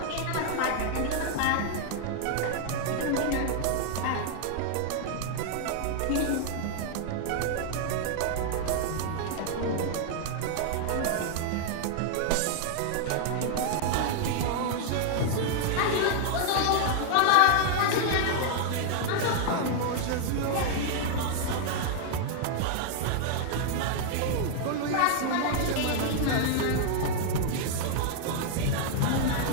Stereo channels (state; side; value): different; both; correlation 0.00